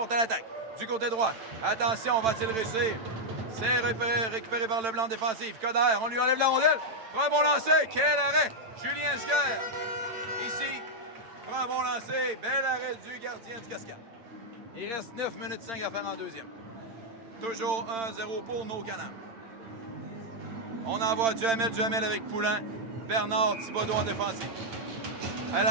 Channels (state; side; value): late; left; 8.9 ms